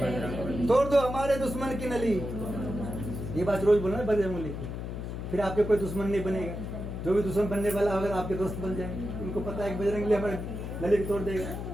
तोड़ दो हमारे दुश्मन की नली। ये बात रोज बोलना बजरंगबली को, फिर आपके कोई दुश्मन नहीं बनेगा। जो भी दुश्मन बनने वाला होगा आपके दोस्त बन जाएंगे। उनको पता है कि बजरंगबली हमारे नली को तोड़ देगा।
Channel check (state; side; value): noise; left; hum, 6 dB below the sound